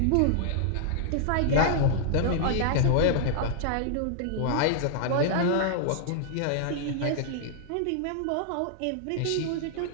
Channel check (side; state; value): both; different; correlation -0.01